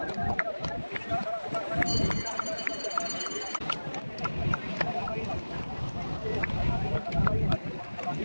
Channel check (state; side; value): inverted; both; correlation -1.00